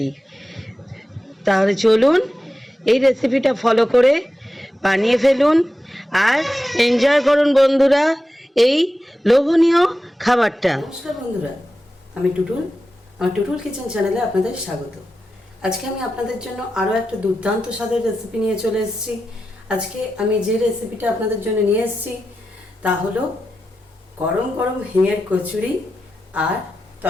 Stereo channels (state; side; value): normal; both; correlation 0.91